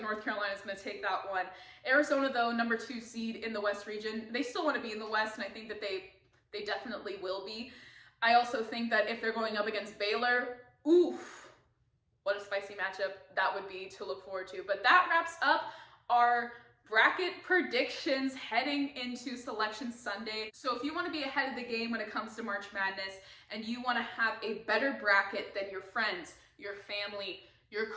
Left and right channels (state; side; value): identical; both; correlation 1.00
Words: North Carolina is going to take that one. Arizona, though, number 2 seed in the West region, they still want to be in the West, and I think that they definitely will be. I also think that if they're going up against Baylor, oof, what a spicy matchup that would be to look forward to. But that wraps up our bracket predictions heading into Selection Sunday. So if you want to be ahead of the game when it comes to March Madness and you want to have a better bracket than your friends, your family, your